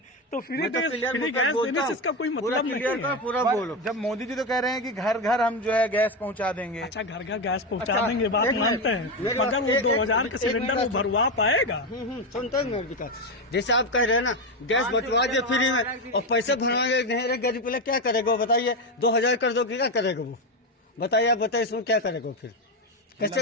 तो फ्री गैस देने से इसका कोई मतलब नहीं है। पूरा बोलो। जब मोदी जी तो कह रहे हैं कि घर घर हम जो है गैस पहुंचा देंगे। अच्छा, घर घर गैस पहुंचा देंगे, बात मानते हैं, मगर वो 2000 का सिलेंडर वो भरवा पाएगा? सुनते हैं विकास, जैसे आप कह रहे हैं ना, गैस बंटवा दिए फ्री में और पैसे भरवाएंगे नहीं, गरीब पहले क्या करेगा वो बताइए? 2000 कर दो, क्या करेगा वो बताइए? आप बताइए, इसमें क्या करेगा फिर? कैसे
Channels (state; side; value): normal; both; correlation 0.12